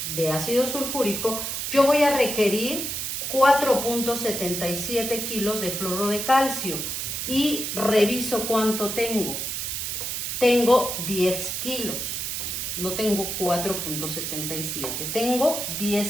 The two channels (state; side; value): noise; right; hiss, 3 dB below the sound